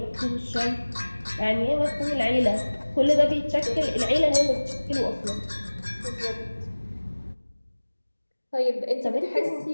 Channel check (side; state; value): both; inverted; correlation -1.00